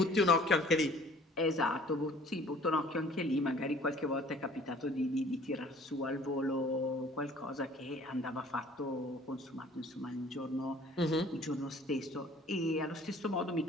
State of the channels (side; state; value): both; normal; correlation 0.52